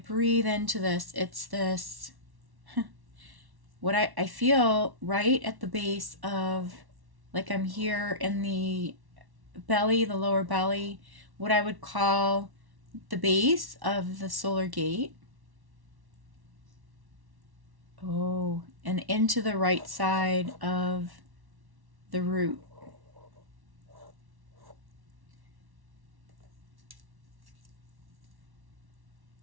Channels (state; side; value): late; left; 1.1 ms